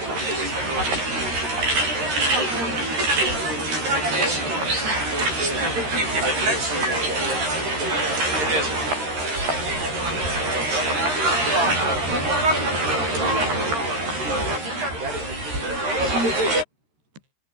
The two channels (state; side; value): late; left; 13 ms